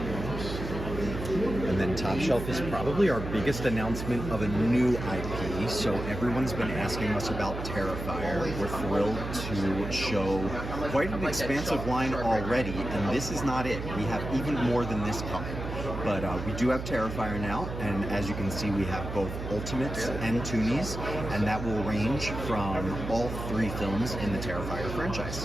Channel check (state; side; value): noise; right; hum, 6 dB below the sound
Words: And then Top Shelf is probably our biggest announcement of a new IP. So everyone's been asking us about Terrifier. We're thrilled to show quite an expansive line already, and this is not it. We have even more than this coming. But we do have Terrifier now, and as you can see, we have both Ultimates and Toonies, and that will range from all 3 films in the Terrifier